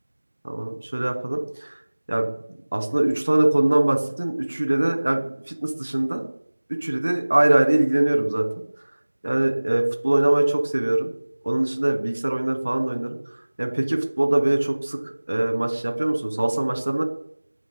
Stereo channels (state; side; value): inverted; both; correlation -1.00